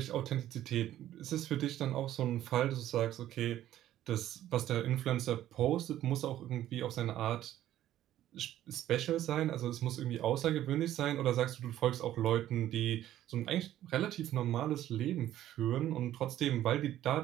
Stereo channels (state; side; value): quieter; left; 12.8 dB